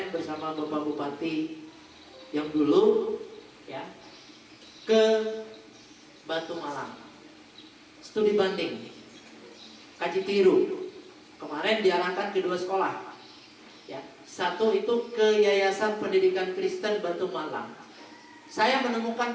bersama Bapak Bupati yang dulu, ya, ke Batu Malang, studi banding, kaji tiru. Kemarin diarahkan ke 2 sekolah, ya. Satu itu ke Yayasan Pendidikan Kristen Batu Malang. Saya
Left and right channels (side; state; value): both; identical; correlation 1.00